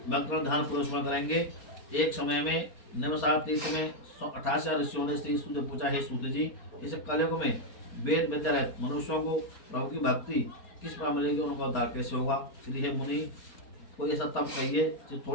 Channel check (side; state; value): right; late; 4.3 ms